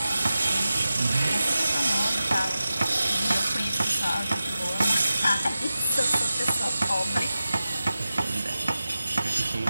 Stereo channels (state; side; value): inverted; both; correlation -0.94